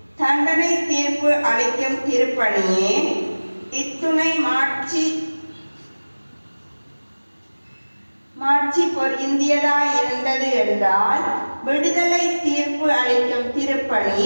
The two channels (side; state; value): both; inverted; correlation -1.00